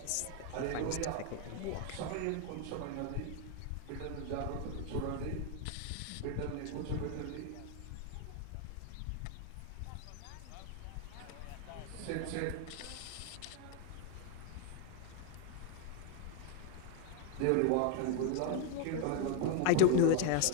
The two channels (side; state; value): both; different; correlation 0.00